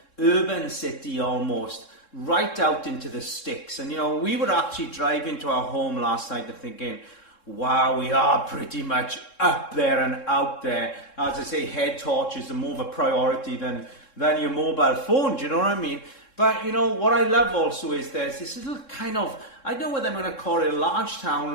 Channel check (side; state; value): right; late; 3.7 ms